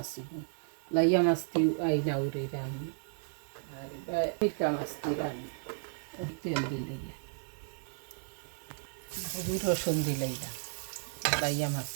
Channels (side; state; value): left; silent; 55 dB below the other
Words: লাইয়া মাছ দি আইনা উড়ি রানমু আর মিঠা মাছ দি রানমু তেল দিলে হলুদ রসুন দিলে লাইয়া মাছ